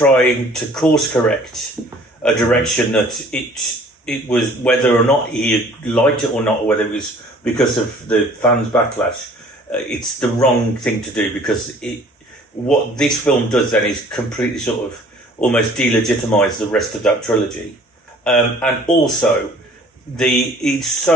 to course correct a direction that it was, whether or not he liked it or not, or whether it was because of the fans' backlash, it's the wrong thing to do, because what this film does then is completely sort of almost delegitimise the rest of that trilogy. And also, it's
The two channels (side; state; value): both; normal; correlation 0.52